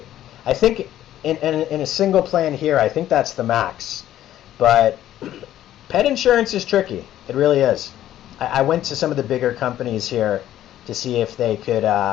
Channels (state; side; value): quieter; right; 12.5 dB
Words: I think in a single plan here, I think that's the max. But pet insurance is tricky. It really is. I went to some of the bigger companies here to see if they could